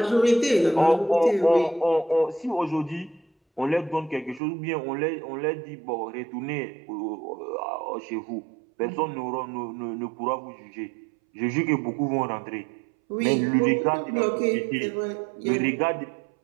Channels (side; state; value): left; drops out; at 4.4 s